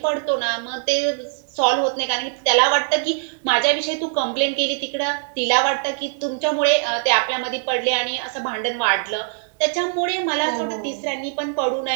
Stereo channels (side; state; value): left; silent; digital silence